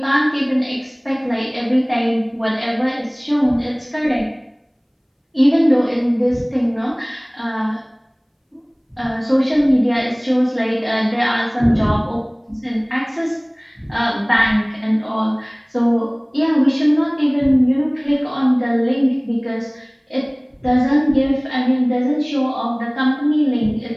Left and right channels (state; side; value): identical; both; correlation 1.00